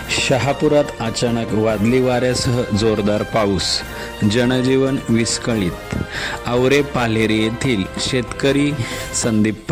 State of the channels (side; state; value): both; identical; correlation 1.00